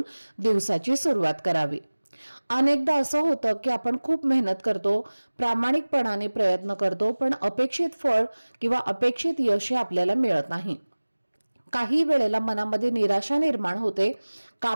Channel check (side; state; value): both; inverted; correlation -1.00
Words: दिवसाची सुरुवात करावी. अनेकदा असं होतं की आपण खूप मेहनत करतो, प्रामाणिकपणाने प्रयत्न करतो, पण अपेक्षित फळ किंवा अपेक्षित यश आपल्याला मिळत नाही. काही वेळेला मनामध्ये निराशा निर्माण होते,